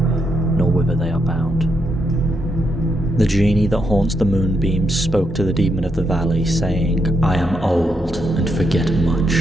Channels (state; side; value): normal; both; correlation 0.80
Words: nor whither they are bound. The genie that haunts the moonbeams spoke to the demon of the valley, saying, "I am old and forget